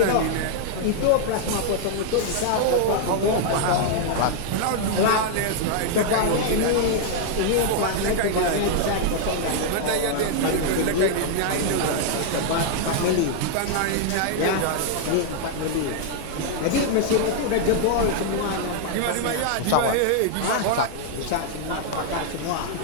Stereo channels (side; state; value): both; different; correlation 0.00